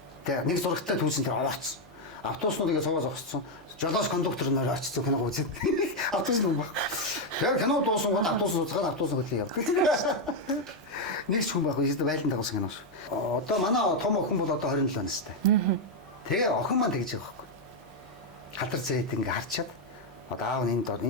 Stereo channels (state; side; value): noise; left; hum, 30 dB below the sound